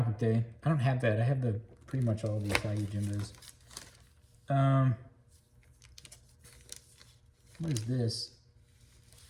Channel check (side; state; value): both; identical; correlation 1.00